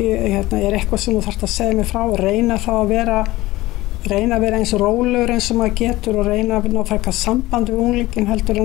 er eitthvað sem þú þarft að segja mig frá og reyna þá að vera eins og rólegur eins og maður getur og reyna að ná frekar samband við unglingin heldur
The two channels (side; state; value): right; quieter; 18.2 dB